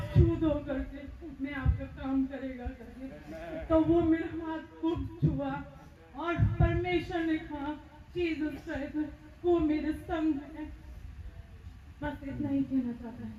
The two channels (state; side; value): identical; both; correlation 1.00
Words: छू दो करके मैं आपका काम करेगा करके। तो वो मेरा हाथ को छुआ और परमेश्वर ने कहा जीसस क्राइस्ट वो मेरे संग है। बस इतना ही कहना चाहता है।